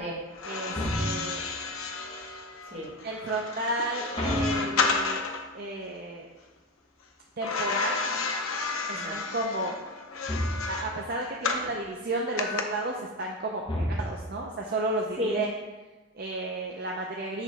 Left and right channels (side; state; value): both; normal; correlation 0.19